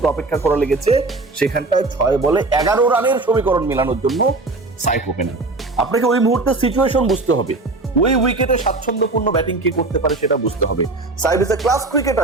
অপেক্ষা করা লেগেছে। সেখানটায় 6 বলে 11 রানের সমীকরণ মেলানোর জন্য সাইফ ওপেনার। আপনাকে ওই মুহূর্তে সিচুয়েশন বুঝতে হবে, ওই উইকেটে স্বাচ্ছন্দ্যপূর্ণ ব্যাটিং কে করতে পারে সেটা বুঝতে হবে। Saif is a class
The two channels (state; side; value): quieter; left; 3.3 dB